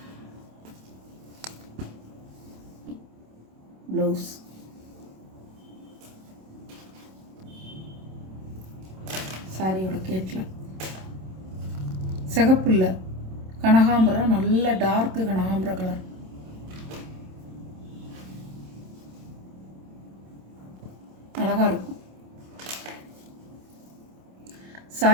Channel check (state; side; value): late; left; 27 ms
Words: ப்ளவுஸ் சாரியோட கேட்டில் சிகப்பு இல்லை, கனகாம்பரம், நல்ல டார்க்கு கனகாம்பர கலர். அழகாக இருக்கும்.